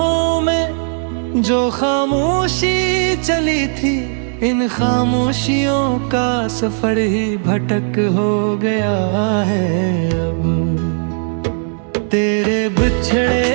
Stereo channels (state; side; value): silent; left; 68 dB below the other